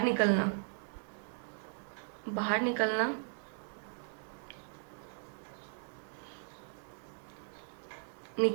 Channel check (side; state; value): left; silent; digital silence